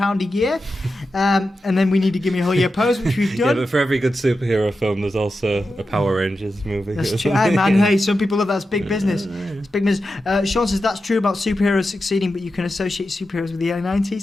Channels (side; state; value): both; normal; correlation 0.90